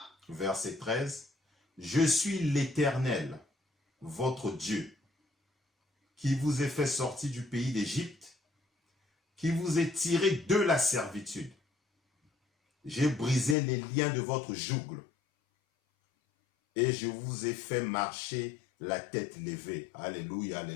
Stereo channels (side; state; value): right; drops out; at 13.6 s